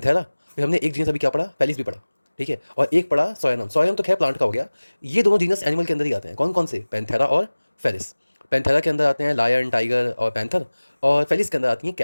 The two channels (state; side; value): inverted; both; correlation -1.00